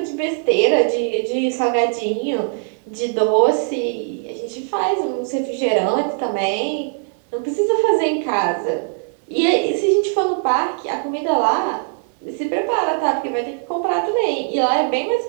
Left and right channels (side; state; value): left; silent; 58 dB below the other